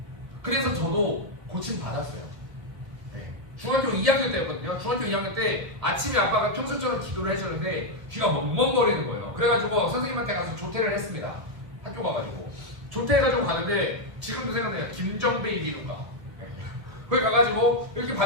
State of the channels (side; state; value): left; late; 1.5 ms